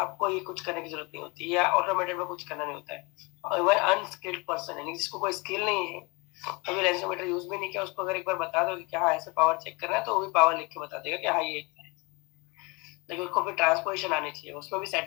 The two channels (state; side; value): quieter; right; 27.9 dB